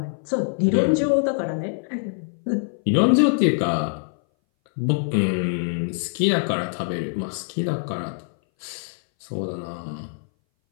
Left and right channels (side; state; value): right; silent; 60 dB below the other